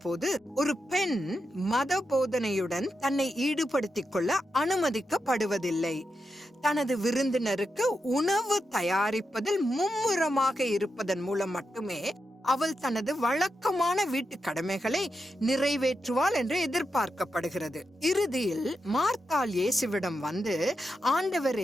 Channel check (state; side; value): normal; both; correlation 0.87